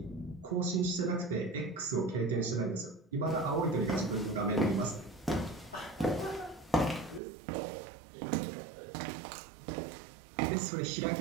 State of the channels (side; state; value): left; drops out; at 7.2 s